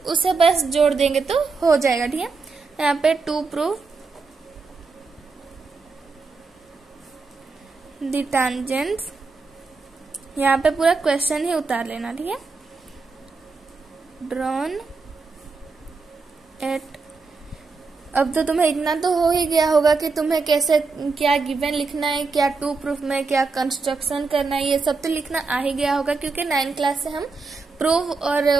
उसे बस जोड़ देंगे तो हो जाएगा। ठीक है, यहाँ पे टू प्रूफ द टेंजेंट्स, यहाँ पे पूरा क्वेश्चन ही उतार लेना। ठीक है, ड्रॉन एट, अब तो तुम्हें इतना तो हो ही गया होगा कि तुम्हें कैसे क्या गिवन लिखना है, क्या टू प्रूफ में क्या कंस्ट्रक्शन करना है, ये सब तो लिखना आ ही गया होगा, क्योंकि 9th क्लास से हम प्रूफ और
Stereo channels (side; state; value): left; quieter; 4.3 dB